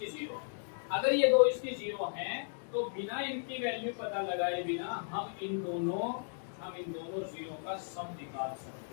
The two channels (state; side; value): silent; right; digital silence